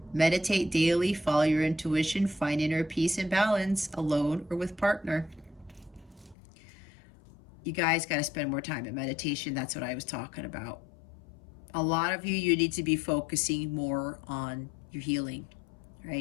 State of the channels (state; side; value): drops out; right; at 6.4 s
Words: Meditate daily, follow your intuition, find inner peace and balance, alone or with partner. You guys got to spend more time in meditation. That's what I was talking about. A lot of you need to be focusing more on your healing,